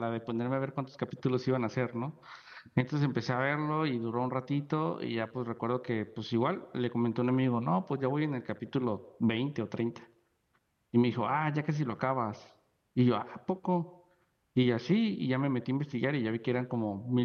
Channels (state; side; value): identical; both; correlation 1.00